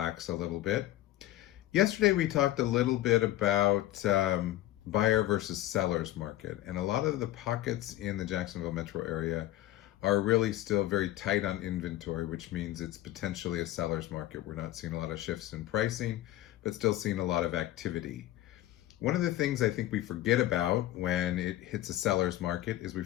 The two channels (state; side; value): quieter; right; 15.0 dB